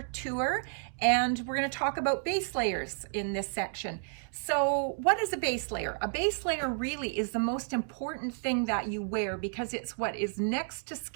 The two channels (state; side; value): silent; left; digital silence